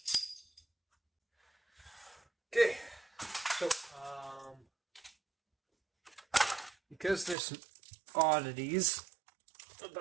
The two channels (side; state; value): left; drops out; at 7.4 s